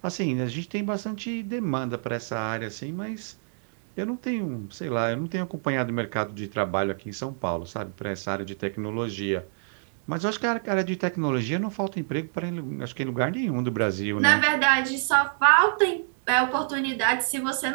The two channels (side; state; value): left; silent; 60 dB below the other